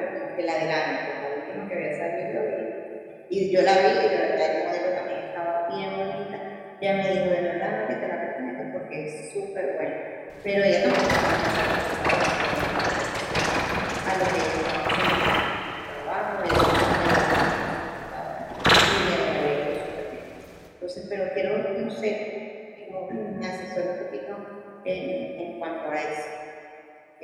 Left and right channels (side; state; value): both; identical; correlation 1.00